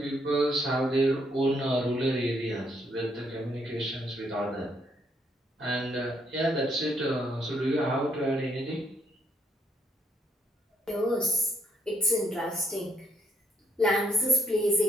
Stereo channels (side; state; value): both; normal; correlation 0.71